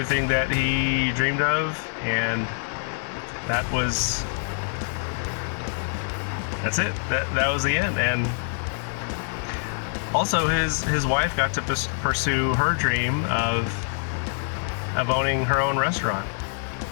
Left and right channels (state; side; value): silent; right; digital silence